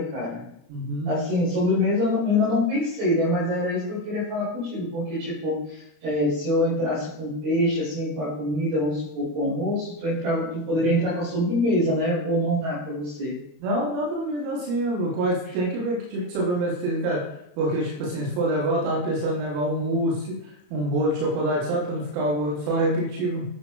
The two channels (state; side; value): late; left; 34 ms